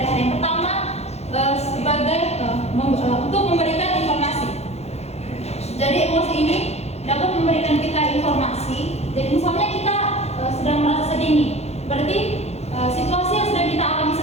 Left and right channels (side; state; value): right; late; 0.31 ms